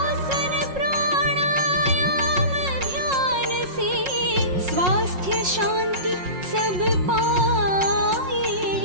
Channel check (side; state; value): left; late; 5.5 ms